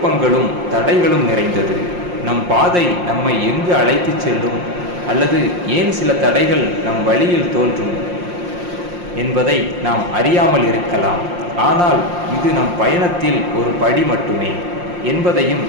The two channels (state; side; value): late; left; 5.6 ms